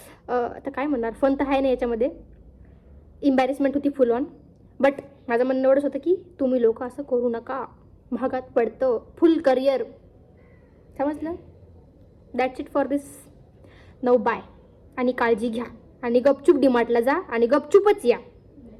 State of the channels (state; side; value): identical; both; correlation 1.00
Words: आता काय म्हणणार, फन तर आहे ना याच्यामध्ये. इम्बॅरेसमेंट होती फुल ऑन. बट माझं म्हणणं एवढंच होतं की तुम्ही लोक असं करू नका, महागात पडतं फुल करिअर, समजलं. दॅट्स इट फॉर दिस. नऊ बाय. आणि काळजी घ्या आणि गपचूप डीमार्टला जा आणि गपचूपच या.